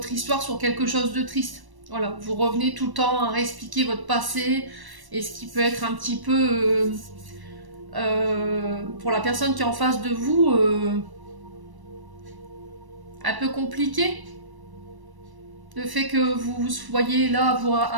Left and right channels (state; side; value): late; left; 1.1 ms